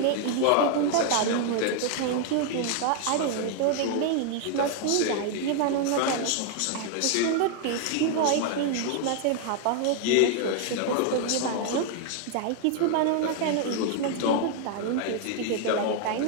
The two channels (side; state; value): both; different; correlation 0.00